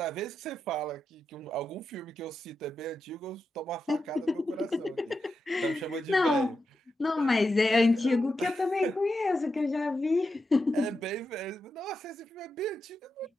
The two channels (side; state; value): both; normal; correlation 0.88